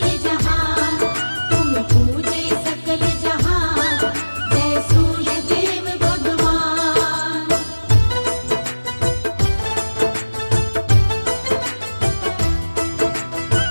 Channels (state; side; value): inverted; both; correlation -1.00